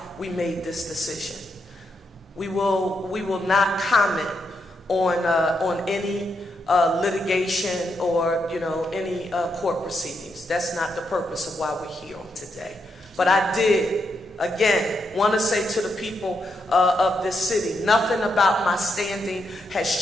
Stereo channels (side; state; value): both; normal; correlation 0.81